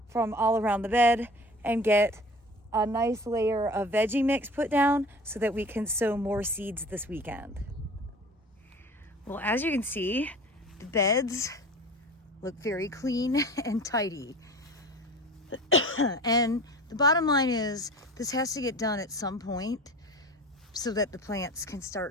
from all around the bed and get a nice layer of veggie mix put down so that we can sow more seeds this weekend. Well, as you can see, the beds look very clean and tidy. And the bottom line is this has to get done at some point so that the plants can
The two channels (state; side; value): normal; both; correlation 0.40